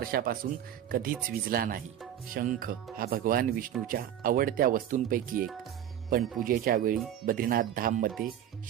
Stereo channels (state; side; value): quieter; left; 10.7 dB